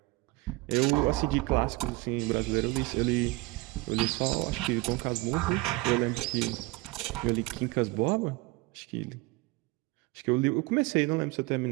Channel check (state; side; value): quieter; left; 22.4 dB